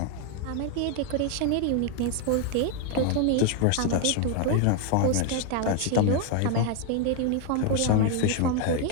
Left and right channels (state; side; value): different; both; correlation 0.01